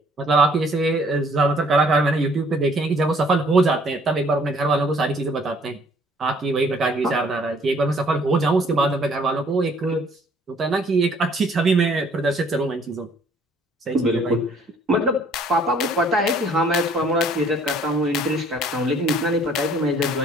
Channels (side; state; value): both; normal; correlation 0.59